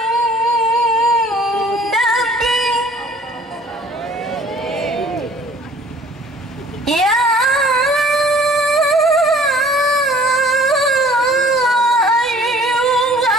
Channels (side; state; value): both; normal; correlation 0.53